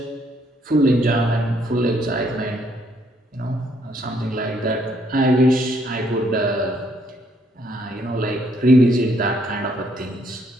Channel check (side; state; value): both; normal; correlation 0.70